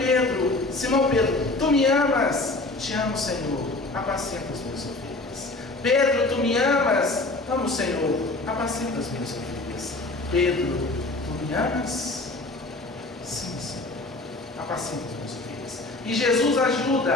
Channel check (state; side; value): quieter; right; 3.0 dB